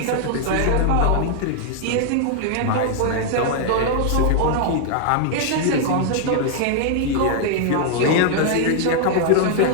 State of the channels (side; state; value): both; different; correlation 0.00